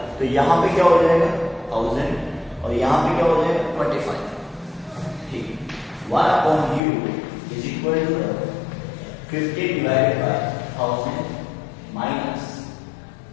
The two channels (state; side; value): drops out; right; at 6.8 s